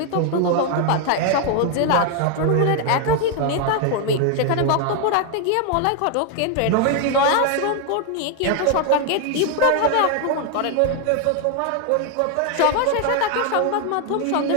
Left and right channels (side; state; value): both; different; correlation 0.00